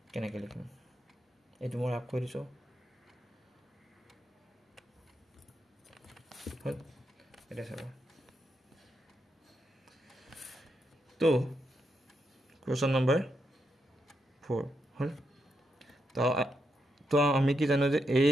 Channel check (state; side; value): normal; both; correlation 0.82